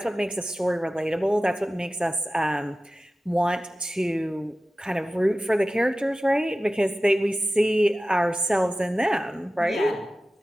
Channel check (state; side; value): normal; both; correlation 0.95